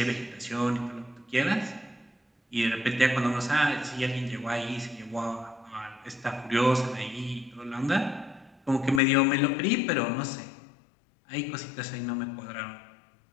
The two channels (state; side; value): drops out; right; at 9.0 s